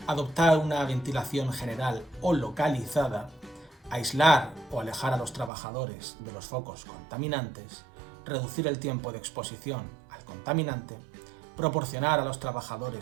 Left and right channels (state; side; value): drops out; left; at 5.5 s